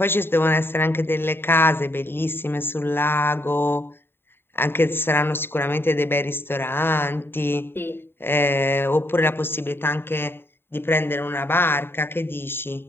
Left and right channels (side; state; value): right; late; 0.11 ms